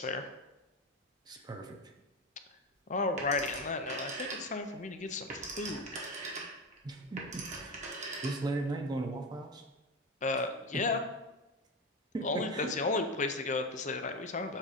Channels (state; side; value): normal; both; correlation 0.18